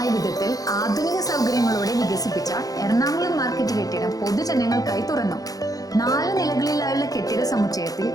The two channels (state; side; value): late; right; 0.17 ms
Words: വിധത്തിൽ ആധുനിക സൗകര്യങ്ങളോടെ വികസിപ്പിച്ച എറണാകുളം മാർക്കറ്റ് കെട്ടിടം പൊതുജനങ്ങൾക്കായി തുറന്നു. 4 നിലകളിലായുള്ള കെട്ടിട സമുച്ചയത്തിൽ